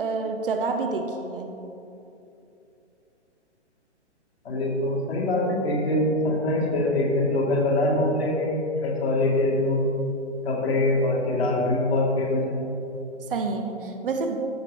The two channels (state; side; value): normal; both; correlation 0.09